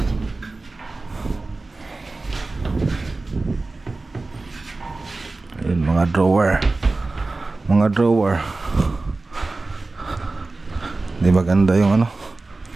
Ayun, mga drawer. mga drawer. Di maganda yung ano.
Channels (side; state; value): left; quieter; 3.4 dB